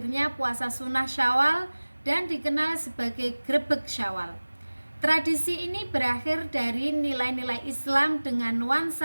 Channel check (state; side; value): inverted; both; correlation -1.00